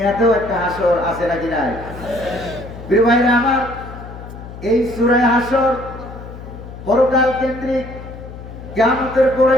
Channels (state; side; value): noise; left; hum, 13 dB below the sound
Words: একটা হাসর আছে নাকি নাই? প্রিয় ভাইরা আমার, এই সূরা হাসর পরকাল কেন্দ্রিক। কিয়ামতের পরে